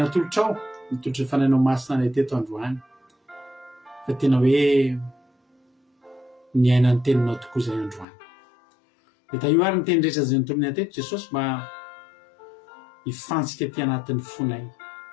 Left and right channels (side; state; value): right; drops out; at 8.1 s